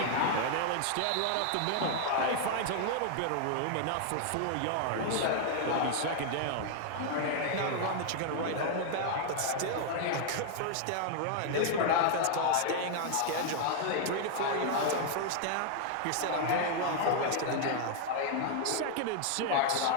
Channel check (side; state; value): both; different; correlation 0.00